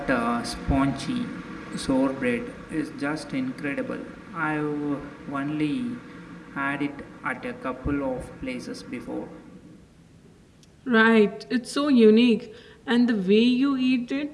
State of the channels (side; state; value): both; identical; correlation 1.00